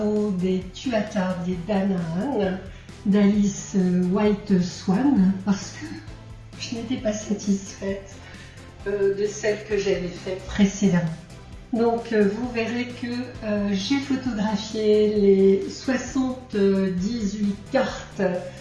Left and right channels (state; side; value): identical; both; correlation 1.00